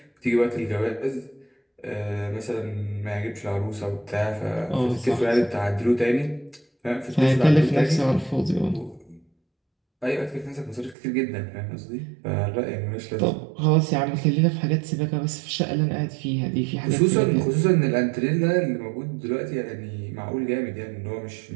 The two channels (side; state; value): left; drops out; at 11.0 s